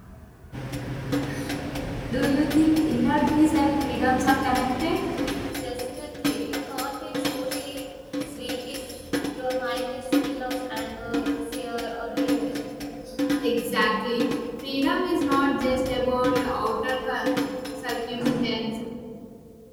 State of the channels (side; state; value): both; identical; correlation 1.00